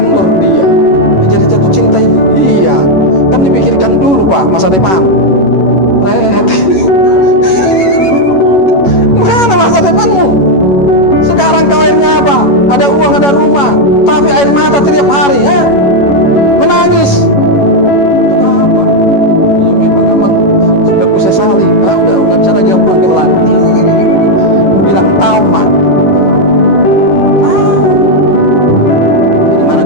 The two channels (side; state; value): right; late; 11 ms